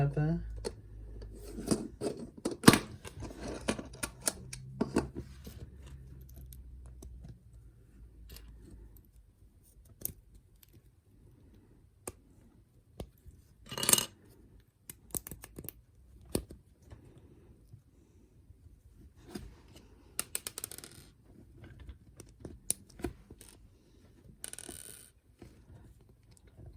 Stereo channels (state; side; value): identical; both; correlation 1.00